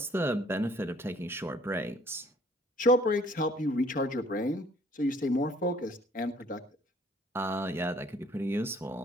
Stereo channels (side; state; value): both; normal; correlation 0.58